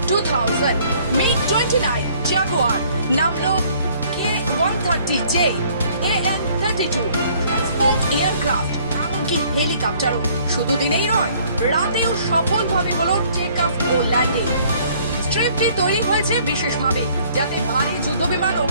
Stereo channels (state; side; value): inverted; both; correlation -0.59